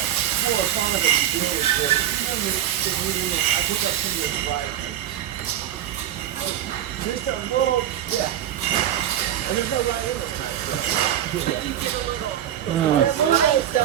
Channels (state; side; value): quieter; left; 11.2 dB